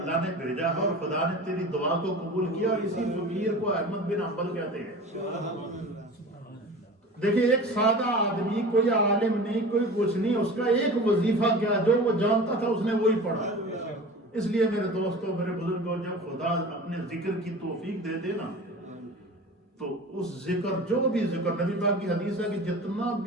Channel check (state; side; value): normal; both; correlation 0.36